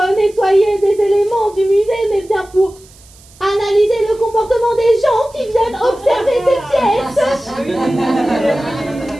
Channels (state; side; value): noise; right; hiss, 26 dB below the sound